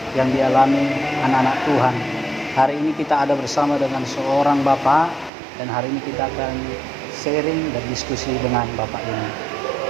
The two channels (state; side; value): drops out; left; at 5.3 s